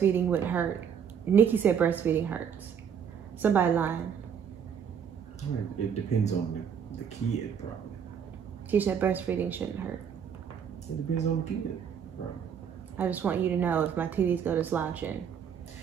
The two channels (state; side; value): quieter; left; 7.8 dB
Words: would hurt. Nikki said breastfeeding hurts. Somebody lying. It depends on the kid, probably. She said breastfeeding shouldn't hurt. It depends on the kid, probably. I just want you to know if my titties go to slouching,